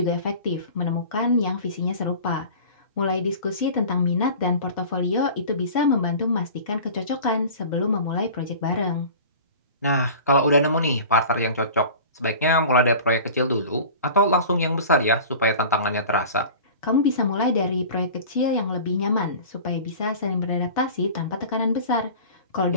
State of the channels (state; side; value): inverted; both; correlation -0.39